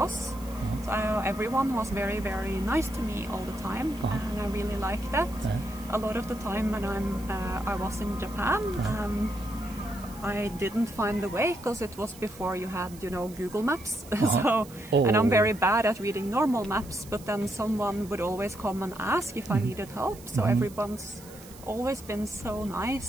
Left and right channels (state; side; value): noise; right; hiss, 20 dB below the sound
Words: So everyone was very, very nice to me all the time, and I really liked that. A lot of the time when I was in Japan, I didn't find the way because it was before you had, Google Maps. And I'm very bad at reading normal maps, but then someone would always come and ask if I needed help. So everyone's always been so